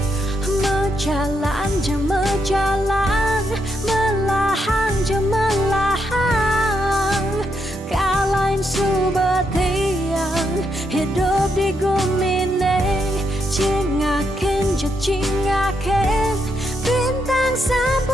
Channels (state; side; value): normal; both; correlation 0.80